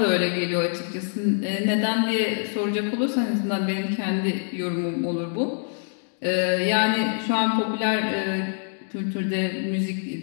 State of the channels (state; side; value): silent; right; digital silence